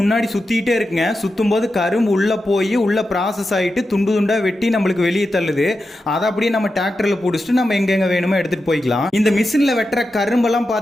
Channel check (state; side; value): normal; both; correlation 0.90